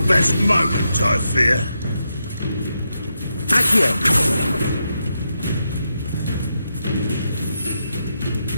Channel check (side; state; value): both; inverted; correlation -0.84